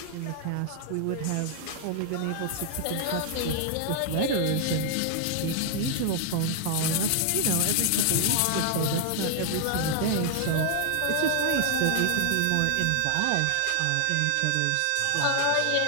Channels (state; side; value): different; both; correlation 0.00